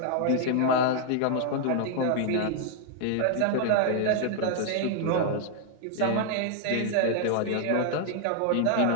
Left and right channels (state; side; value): different; both; correlation 0.00